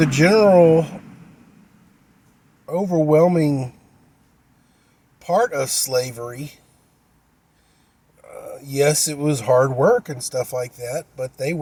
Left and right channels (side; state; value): both; identical; correlation 1.00